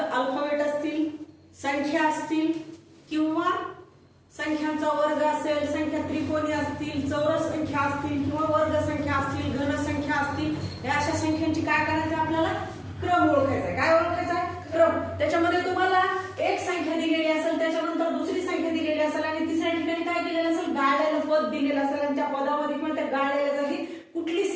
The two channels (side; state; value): both; identical; correlation 1.00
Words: अल्फाबेट असतील, संख्या असतील किंवा संख्यांचा वर्ग असेल, संख्या त्रिकोणी असतील, चौरस संख्या असतील किंवा वर्ग संख्या असतील, घन संख्या असतील, या अशा संख्यांची काय करायचं आपल्याला क्रम ओळखायचा आहे. काय ओळखायचा आहे? क्रम. त्याच्यामध्ये तुम्हाला एक संख्या दिलेली असेल, त्याच्यानंतर दुसरी संख्या दिलेली असेल आणि तिसऱ्या ठिकाणी काय दिलेलं असेल, गाळलेलं पद दिलेलं असेल आणि त्या पदामध्ये किंवा त्या गाळलेल्या जागी कुठली